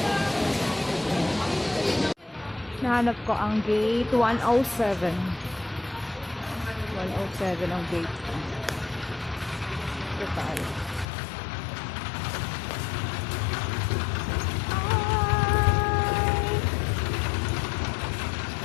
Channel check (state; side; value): drops out; right; at 11.1 s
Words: Nahanap ko ang gate 107. 107 ang gate ko. Ito tayo.